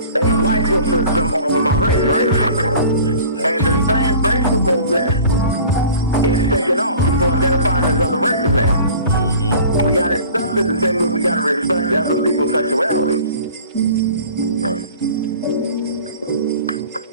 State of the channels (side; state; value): both; inverted; correlation -0.44